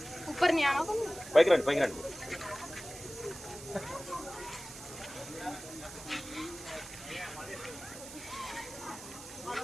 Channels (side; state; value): right; noise; hiss, 13 dB below the sound